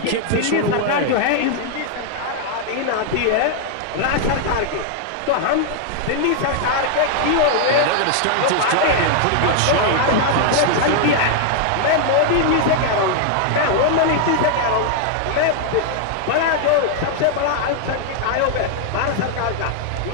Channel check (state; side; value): different; both; correlation 0.00